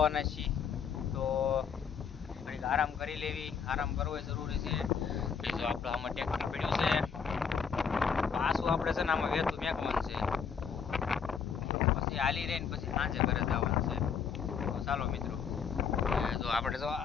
છીએ. તો ઘડીક આરામ કરી લેવી, આરામ કરવો એ જરૂરી છે. જો આપણે આમાં ટ્રેક્ટર પડ્યું છે, પાછું આપણે છે ને આમાં વેતું મેકવાનું છે, પછી હાલી રહીને પછી સાંજે ઘરે જવાનું છે. તો ચાલો મિત્રો, જો આપણે જો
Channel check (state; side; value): quieter; right; 6.6 dB